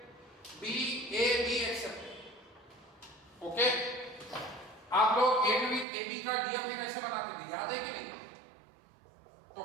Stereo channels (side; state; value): left; drops out; at 5.9 s